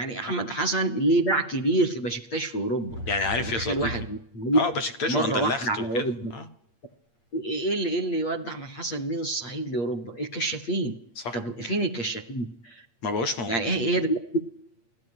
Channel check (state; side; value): late; right; 8.6 ms